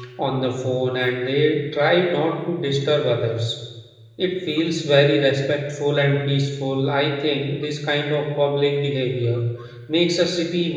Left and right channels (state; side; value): identical; both; correlation 1.00